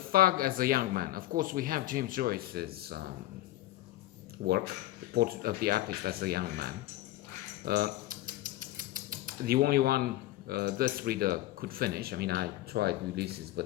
as a young man. Of course, we have James Joyce's work, the portrait of the artist as a young man. Uh, the only one this reader could finish. I mean, I tried Ulysses, but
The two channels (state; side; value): quieter; right; 15.8 dB